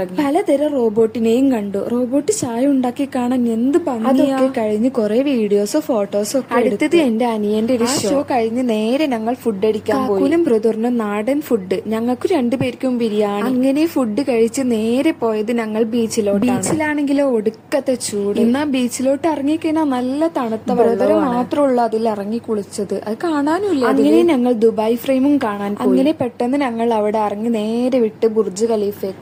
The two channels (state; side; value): identical; both; correlation 1.00